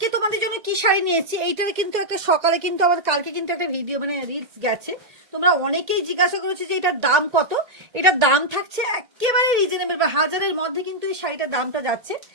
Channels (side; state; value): left; late; 1.9 ms